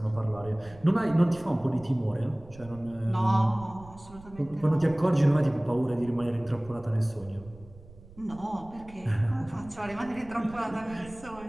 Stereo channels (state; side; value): noise; right; rumble, 20 dB below the sound